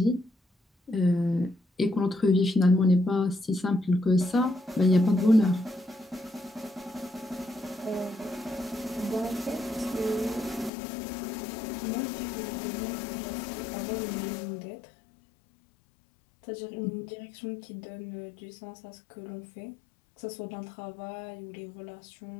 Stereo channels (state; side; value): drops out; right; at 10.7 s